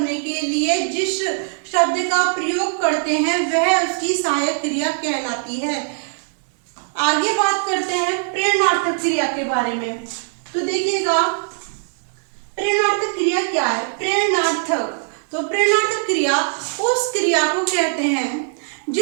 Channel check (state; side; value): silent; left; 63 dB below the other